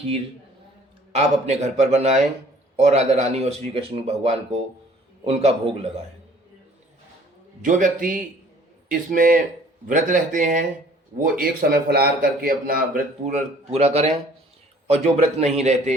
आप अपने घर पर बनाएं और राधा रानी और श्री कृष्ण भगवान को उनका भोग लगाएं। जो व्यक्ति इसमें व्रत रहते हैं वो एक समय फलाहार करके अपना व्रत पूरा करें, और जो व्रत नहीं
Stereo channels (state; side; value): normal; both; correlation 0.54